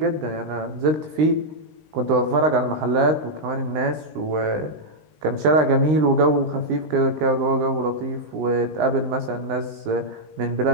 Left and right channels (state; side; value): late; left; 19 ms